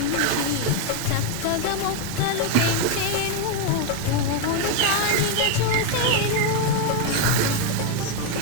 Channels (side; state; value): both; different; correlation 0.01